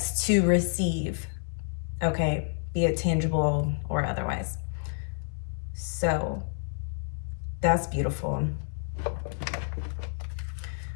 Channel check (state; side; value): silent; right; digital silence